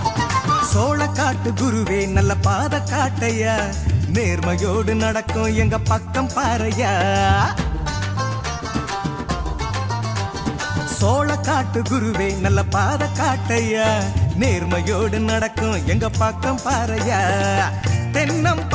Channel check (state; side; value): identical; both; correlation 1.00